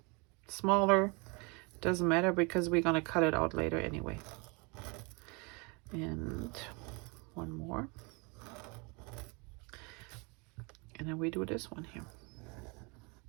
smaller, doesn't matter, because we're going to cut it out later anyway. And one more, and then we do this one here.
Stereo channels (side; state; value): left; quieter; 30.4 dB